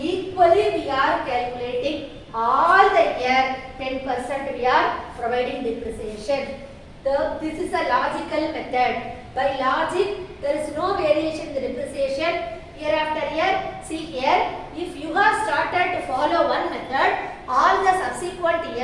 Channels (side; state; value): both; identical; correlation 1.00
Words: equally we are calculating all the year 10% we are providing depreciation. This is a logical method. By logic there is no variation in the depreciation year after year. See here, if you have started to follow one method, all the subsequent